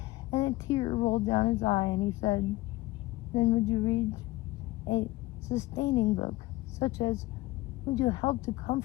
and a tear rolled down his eye, and he said, then would you read a sustaining book, such as, would you help to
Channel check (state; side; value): quieter; right; 18.8 dB